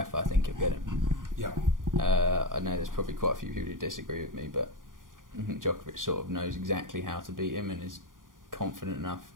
I think he'll get him. Yeah. I know there's probably quite a few people who disagree with me, but I think Djokovic sort of knows exactly how to beat him and is confident enough,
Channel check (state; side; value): late; left; 0.89 ms